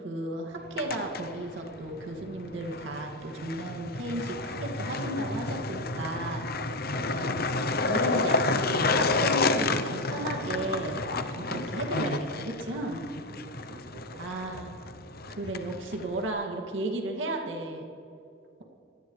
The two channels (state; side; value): normal; both; correlation 0.12